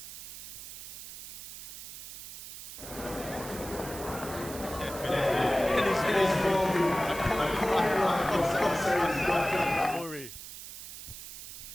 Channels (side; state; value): right; noise; hiss, 11 dB below the sound